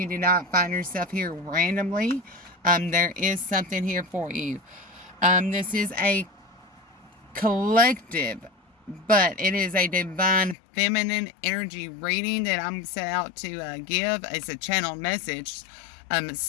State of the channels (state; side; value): drops out; right; at 10.6 s